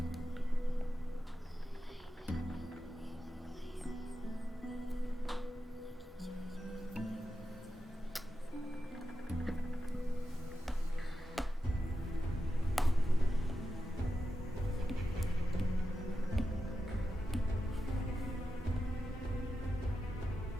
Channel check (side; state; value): both; normal; correlation 0.90